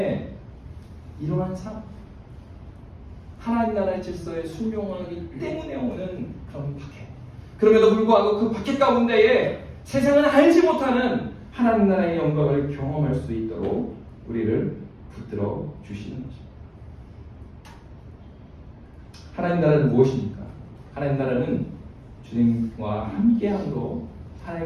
이러한 삶, 하나님 나라의 질서에 순종하기 때문에 오는 그런 박해. 그럼에도 불구하고 그 박해 가운데에 세상은 알지 못하는 하나님 나라의 영광을 경험할 수 있도록 우리를 붙들어 주시는 것입니다. 하나님 나라는 무엇입니까? 하나님 나라는 주님과 함께함으로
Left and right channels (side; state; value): both; identical; correlation 1.00